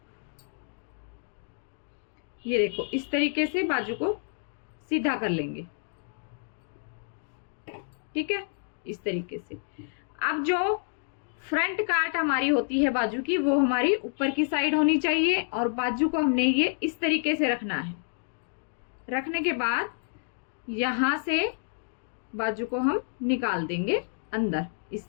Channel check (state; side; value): silent; right; digital silence